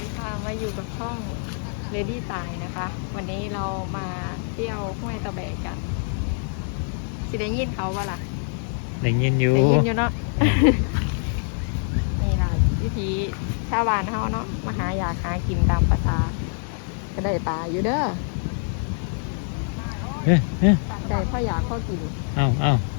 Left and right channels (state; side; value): silent; right; 57 dB below the other